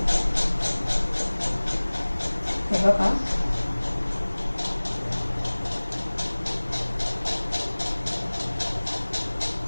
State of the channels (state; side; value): inverted; both; correlation -1.00